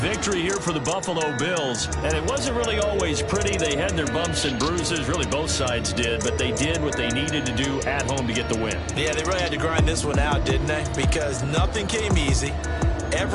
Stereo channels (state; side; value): identical; both; correlation 1.00